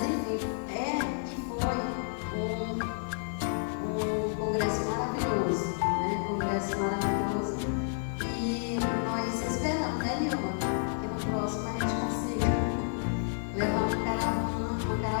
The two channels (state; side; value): silent; right; digital silence